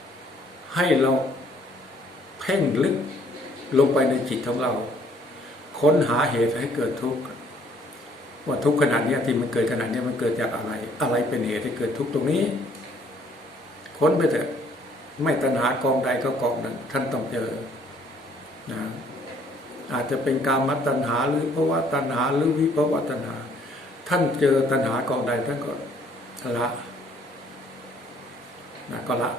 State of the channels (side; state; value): both; normal; correlation 0.62